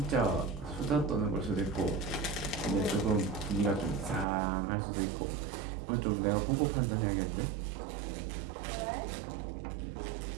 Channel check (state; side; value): drops out; left; at 4.2 s